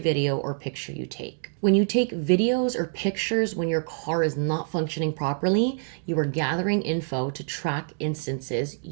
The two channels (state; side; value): silent; left; digital silence